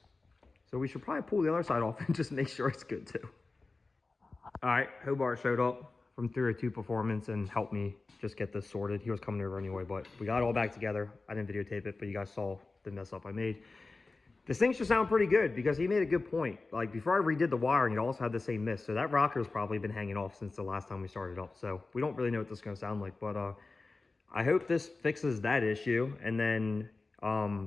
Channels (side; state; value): right; quieter; 3.6 dB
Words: So we should probably pull the other side off and just make sure it's good too. All right, Hobart showed up from 302 Performance and helped me just get this sorted. He was coming over anyway, but we got it all back together. I didn't videotape it, but you guys saw the mess up I made. This thing should sound pretty good because he made a good point. Like before I redid the wiring, it also had the same miss. So that rocker's probably been hanging off since the last time we started up. So we don't really know what this is going to sound like, but I hope this fixes that issue. And then